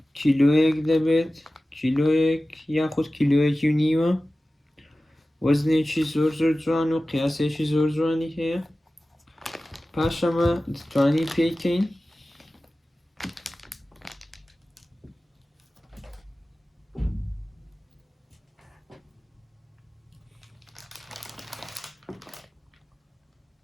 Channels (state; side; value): normal; both; correlation 0.96